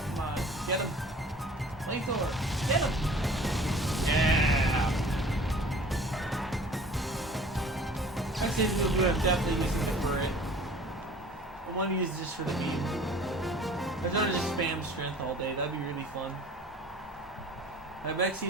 Come on, get him! Flamethrower, get him! Yeah! I'd say we would have definitely used it for it. I want to use this for the meme. I just want to just spam strength all day, that'd be really fun. My next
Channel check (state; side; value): normal; both; correlation 0.47